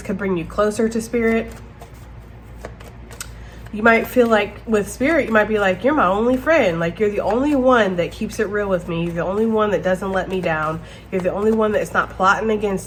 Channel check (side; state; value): both; identical; correlation 1.00